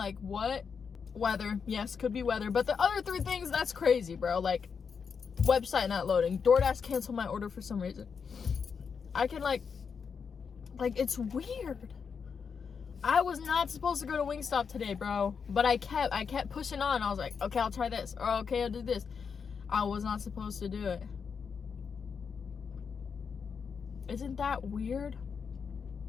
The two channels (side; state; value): right; quieter; 6.1 dB